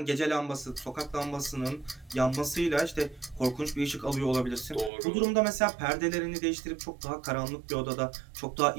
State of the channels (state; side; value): drops out; left; at 4.9 s